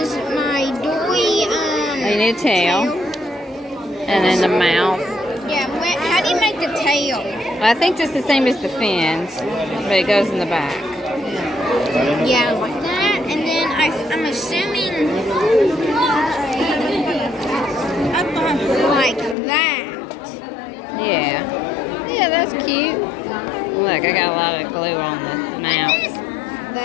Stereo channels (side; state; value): right; drops out; at 19.4 s